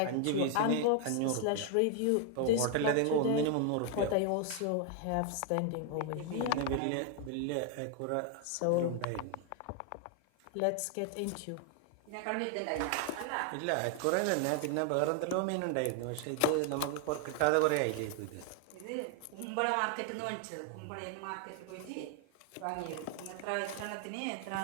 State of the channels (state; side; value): different; both; correlation 0.00